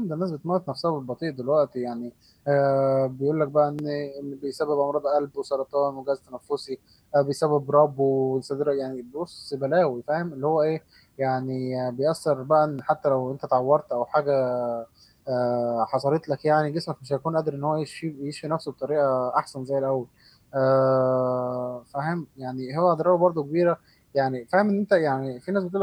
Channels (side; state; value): both; identical; correlation 1.00